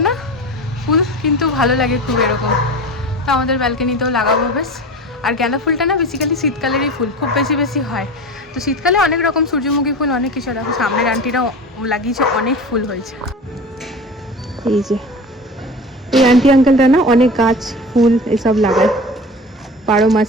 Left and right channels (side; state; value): both; normal; correlation 0.33